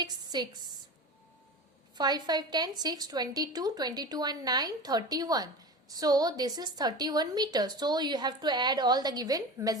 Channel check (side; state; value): both; normal; correlation 0.30